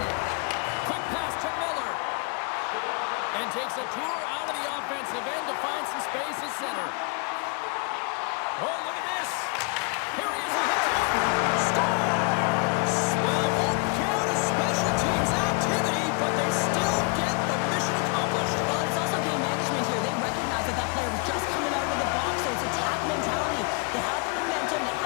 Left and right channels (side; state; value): right; quieter; 31.5 dB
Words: Quick pass to Miller. And takes a tour out of the offensive end to find some space at center. Oh, look at this. Here he is. Scores! Well, won't count as special teams activity, but they still get the mission accomplished. Well, it's also game management here. They recognize that that player was just coming out of the box, so it's attack mentality. They had the momentum, they